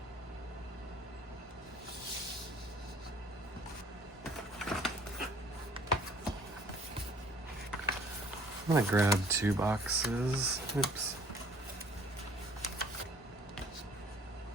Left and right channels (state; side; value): normal; both; correlation 0.56